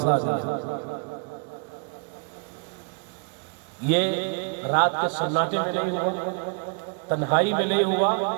دیا۔ یہ رات کے سناٹے میں نہیں ہوا، تنہائی میں نہیں ہوا،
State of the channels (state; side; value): quieter; left; 35.4 dB